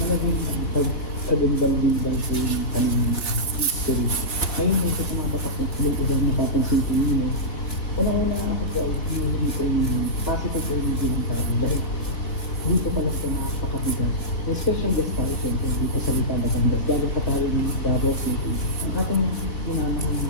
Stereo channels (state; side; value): late; right; 4.1 ms